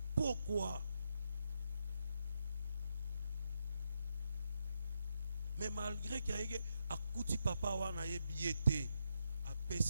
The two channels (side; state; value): both; inverted; correlation -0.82